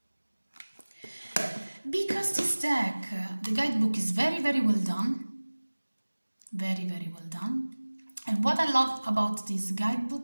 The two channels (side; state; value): both; inverted; correlation -1.00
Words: Because this deck, the guidebook is very, very well done. Very, very well done. And what I love about this